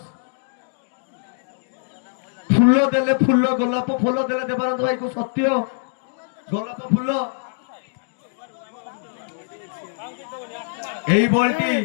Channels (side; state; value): right; silent; digital silence